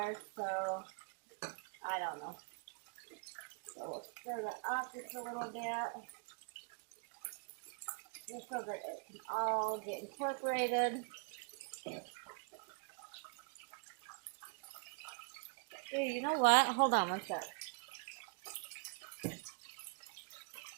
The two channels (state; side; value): quieter; left; 35.6 dB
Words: so I don't know. So we'll stir that up just a little bit, just so that it can all get incorporated. Here, you know what? Hold on one sec.